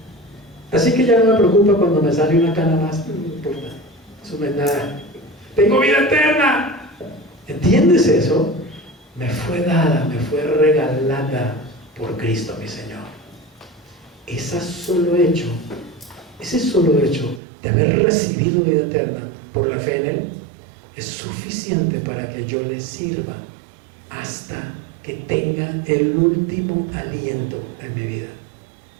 Así que ya no me preocupa cuando me sale una cana más. No importa, eso no es nada. Tengo vida eterna. ¿Entiendes eso? Me fue dada, me fue regalada por Cristo mi Señor. Ese solo hecho de haber recibido vida eterna por la fe en Él es suficiente para que yo le sirva hasta que tenga el último aliento en mi vida,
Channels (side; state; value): left; drops out; at 17.4 s